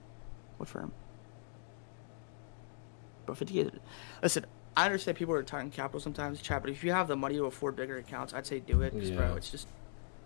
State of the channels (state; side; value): silent; right; digital silence